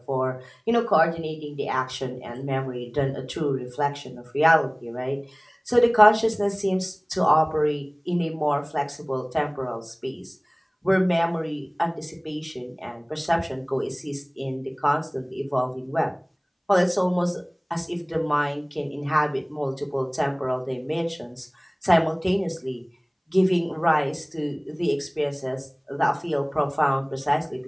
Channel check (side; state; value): both; identical; correlation 1.00